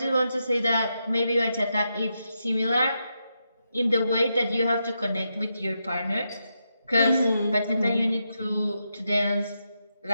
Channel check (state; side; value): inverted; both; correlation -0.85